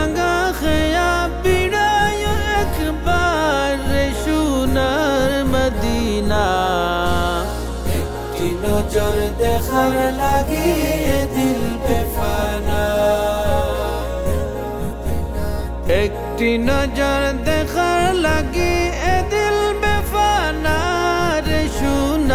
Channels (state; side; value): identical; both; correlation 1.00